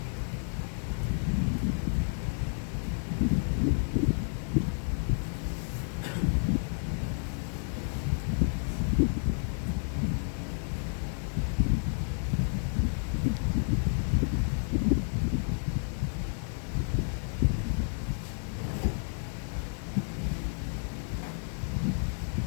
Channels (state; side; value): silent; right; 57 dB below the other